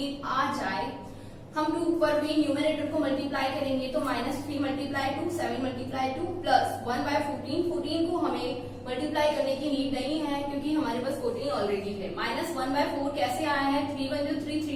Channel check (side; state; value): both; identical; correlation 1.00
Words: आ जाए। हम 2 पर भी न्यूमरेटर को मल्टीप्लाई करेंगे तो -3 मल्टीप्लाई 2 7 मल्टीप्लाई 2 प्लस 1/14। 14 को हमें मल्टीप्लाई करने की नीड नहीं है क्योंकि हमारे पास 14 ऑलरेडी है। -1/4 कैसे आया है, 3 1 जो 3